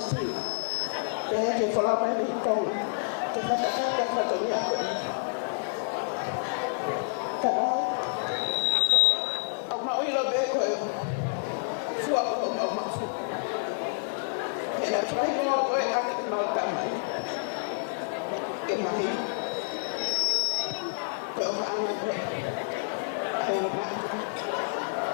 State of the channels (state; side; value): silent; right; digital silence